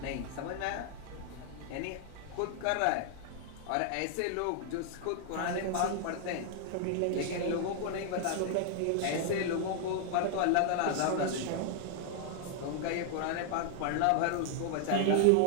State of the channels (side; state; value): both; different; correlation 0.00